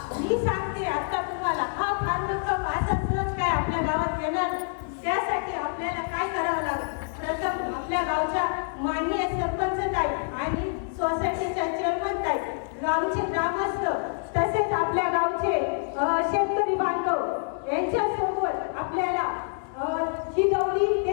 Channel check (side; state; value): right; silent; digital silence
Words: मी सांगते आता तुम्हाला. हा फॉर्म्युला माझा सहज काय आपल्या गावात येणार, त्यासाठी आपल्याला काय करावं लागेल. प्रथम आपल्या गावच्या माननीय सरपंच ताई आणि सोसायटीच्या चेअरमन ताई, गावचे ग्रामस्थ, तसेच आपल्या गावचे शेतकरी बांधव यांच्यासोबत आपल्याला ही गौरी